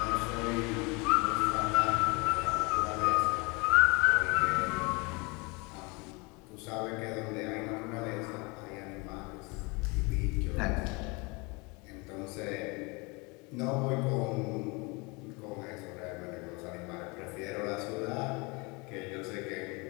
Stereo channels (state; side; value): quieter; right; 28.1 dB